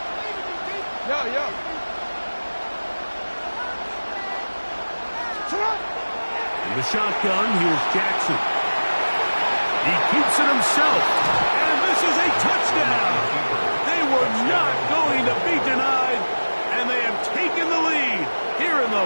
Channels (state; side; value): inverted; both; correlation -1.00